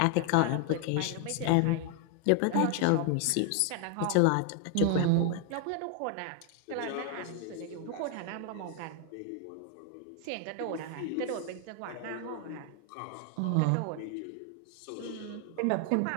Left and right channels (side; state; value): both; different; correlation 0.00